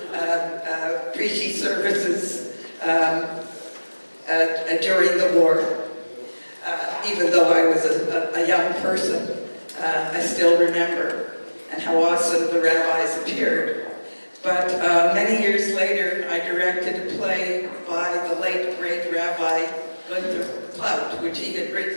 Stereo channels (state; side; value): inverted; both; correlation -1.00